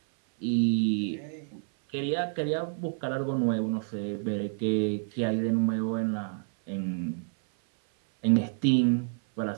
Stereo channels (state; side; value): silent; left; 59 dB below the other